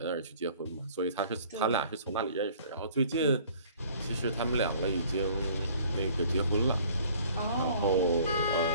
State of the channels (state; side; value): inverted; both; correlation -0.53